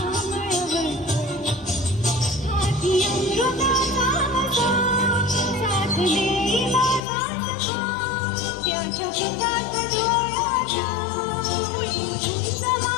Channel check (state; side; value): drops out; right; at 7.0 s